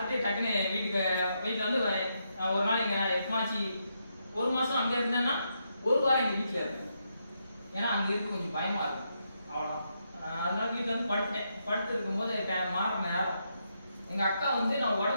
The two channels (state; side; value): inverted; both; correlation -0.81